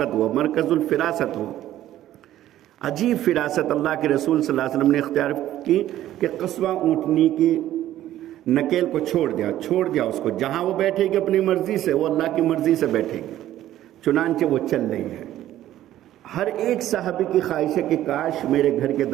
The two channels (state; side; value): quieter; left; 13.2 dB